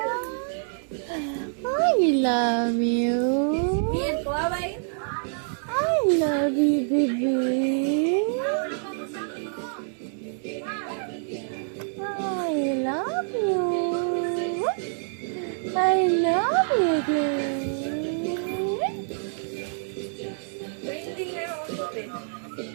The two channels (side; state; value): left; silent; digital silence